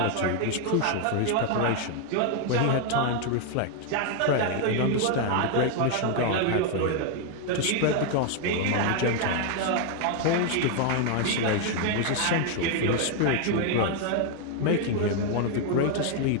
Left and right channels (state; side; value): different; both; correlation 0.00